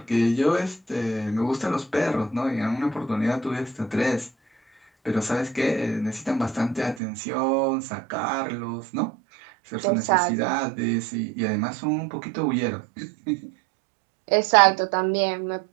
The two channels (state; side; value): drops out; left; at 7.0 s